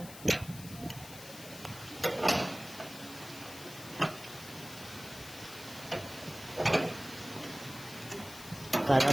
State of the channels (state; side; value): noise; left; hiss, 14 dB below the sound